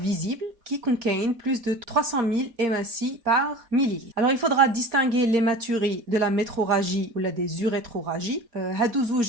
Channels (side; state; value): left; late; 4.3 ms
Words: qui contient plus de 300 000 hématies par millilitre. Alors il faudra distinguer l'hématurie de la métroragie ou la des urétroragies.